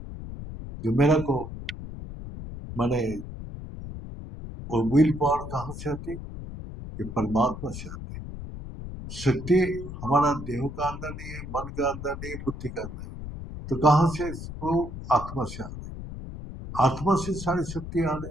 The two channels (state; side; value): noise; left; rumble, 10 dB below the sound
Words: जो मेरा को माने वो विल पावर कहाँ से आती है? ये परमात्मा से आती है। शक्ति हमारा देह का अंदर नहीं है, मन का अंदर नहीं है, बुद्धि का अंदर है। तो कहाँ से? वो आत्मा से आ रही। आत्मा से सारी शक्ति आ